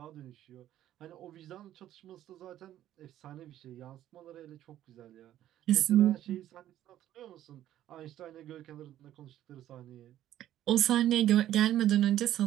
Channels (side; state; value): left; quieter; 12.5 dB